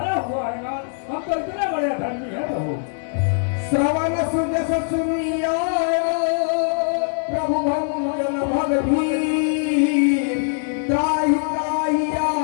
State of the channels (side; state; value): right; silent; digital silence